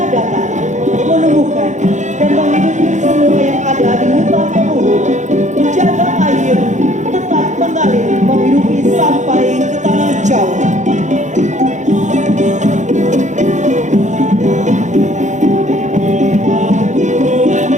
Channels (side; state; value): left; late; 0.35 ms